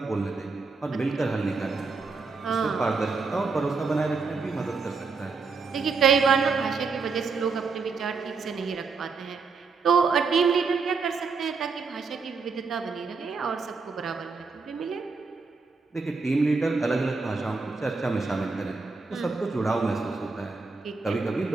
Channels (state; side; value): quieter; left; 4.5 dB